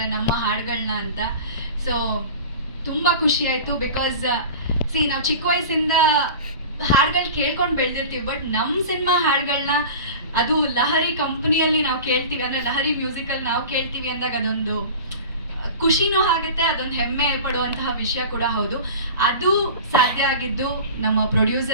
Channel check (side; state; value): both; inverted; correlation -0.35